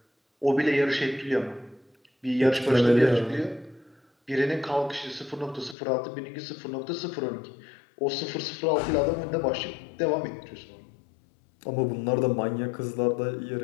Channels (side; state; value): right; drops out; at 5.8 s